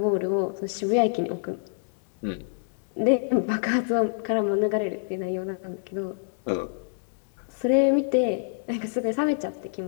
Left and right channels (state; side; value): silent; right; digital silence